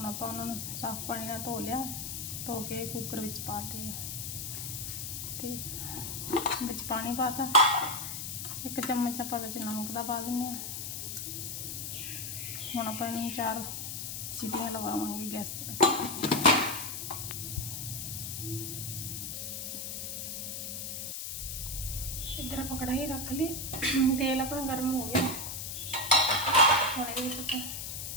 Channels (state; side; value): noise; left; hiss, 5 dB below the sound